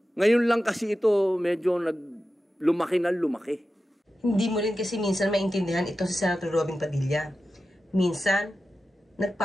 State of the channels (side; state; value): both; normal; correlation 0.92